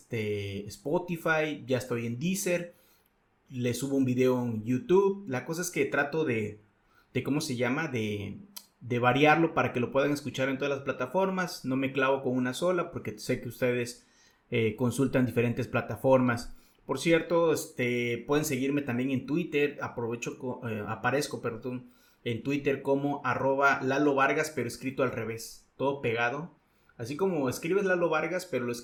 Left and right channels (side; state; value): both; identical; correlation 1.00